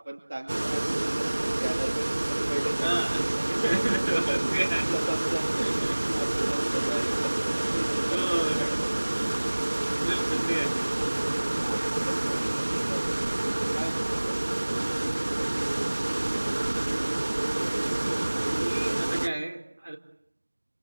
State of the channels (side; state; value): both; inverted; correlation -1.00